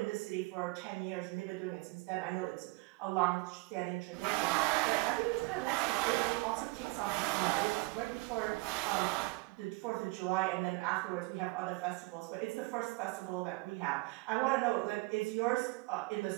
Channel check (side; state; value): left; quieter; 24.8 dB